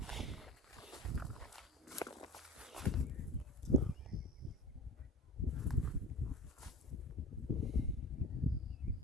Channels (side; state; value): both; normal; correlation 0.33